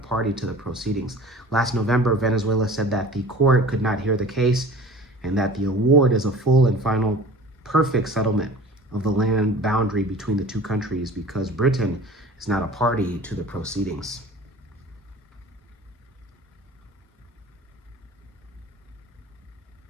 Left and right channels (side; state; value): both; normal; correlation 0.42